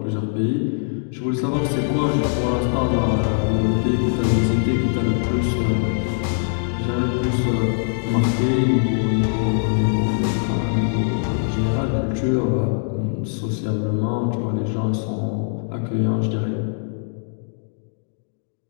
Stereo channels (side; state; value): right; silent; digital silence